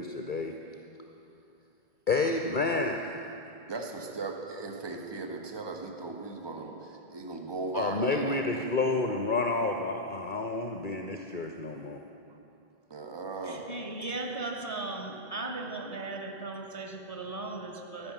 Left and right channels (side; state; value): right; late; 2.3 ms